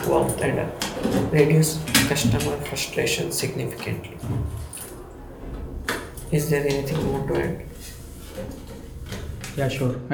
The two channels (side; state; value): both; identical; correlation 1.00